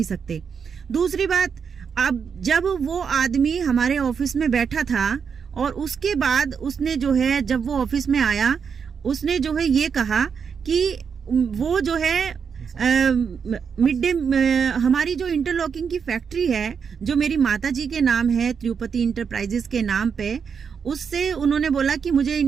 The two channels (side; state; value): left; quieter; 6.5 dB